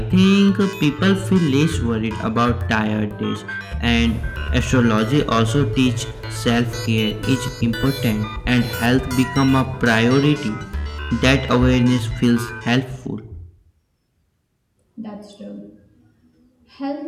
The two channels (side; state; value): both; identical; correlation 1.00